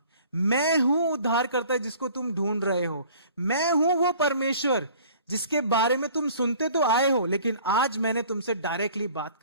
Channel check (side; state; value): both; inverted; correlation -0.50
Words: मैं हूं उद्धारकर्ता जिसको तुम ढूंढ रहे हो, मैं हूं वो परमेश्वर जिसके बारे में तुम सुनते तो आए हो, लेकिन आज मैंने तुमसे डायरेक्टली बात